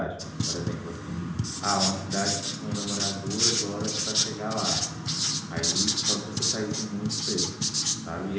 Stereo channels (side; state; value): both; identical; correlation 1.00